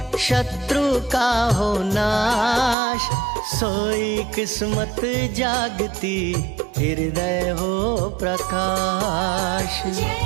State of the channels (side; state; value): left; drops out; at 2.8 s